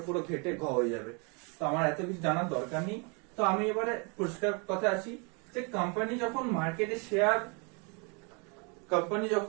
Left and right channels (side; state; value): left; quieter; 33.5 dB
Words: পুরো ঘেটে হয়ে যাবে। তো আমার এত কিছু জানার দরকার নেই। তো আমি এবারে পরিষ্কার কথা আসি যে কোম্পানি যখন মার্কেটে